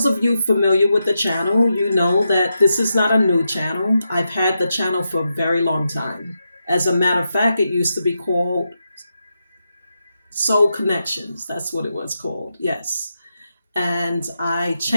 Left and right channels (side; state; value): both; inverted; correlation -0.86